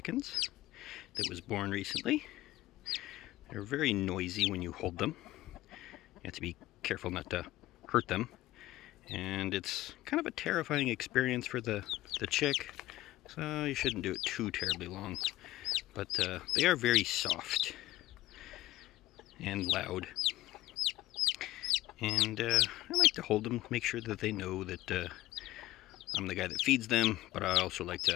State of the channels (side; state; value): right; quieter; 16.5 dB